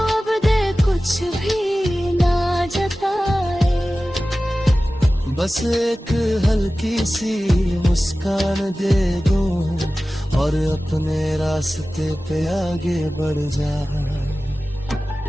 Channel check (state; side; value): normal; both; correlation 0.96